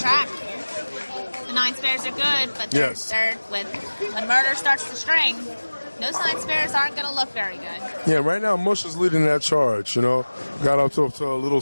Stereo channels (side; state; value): both; inverted; correlation -1.00